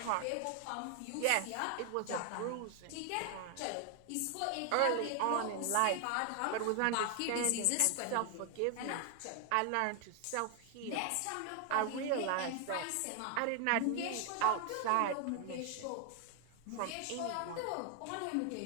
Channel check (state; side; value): different; both; correlation 0.00